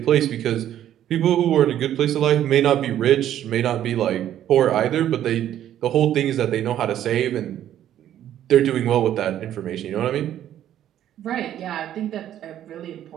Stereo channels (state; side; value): quieter; left; 11.4 dB